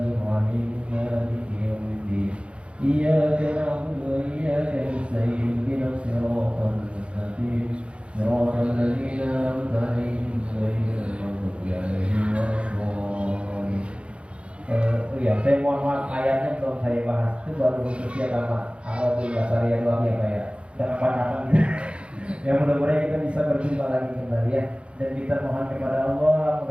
rahim maliki yaumiddin. Iyyaka na'budu wa iyyaka nasta'in ihdinas siratal mustaqim. Siratal ladzina an'amta 'alaihim ghairil maghdubi 'alaihim waladdallin. Saya mohon maaf ayatnya belum saya bahas. Itu baru khususnya sama Alhamdulillah Syariah Luar ya Pak ya. Dan kapan-kapan gitu. Ya mudah-mudahan kita bisa berjumpa lagi kembali ya. Dan kita mohon kepada Allah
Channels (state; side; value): late; left; 0.059 ms